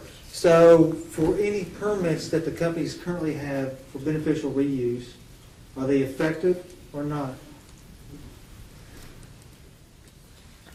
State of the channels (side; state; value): both; identical; correlation 1.00